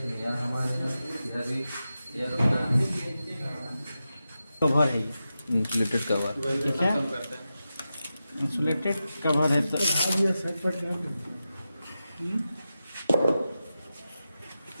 यार हमारे इधर भी यार अपना कवर है ये, इंसुलेटेड कवर। ठीक है, इंसुलेटेड कवर है।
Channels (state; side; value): inverted; both; correlation -0.91